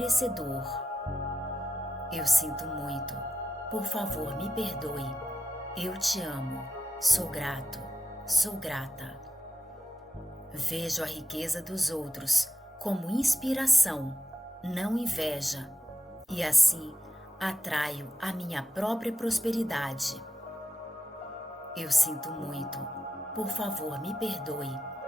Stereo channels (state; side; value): normal; both; correlation 0.89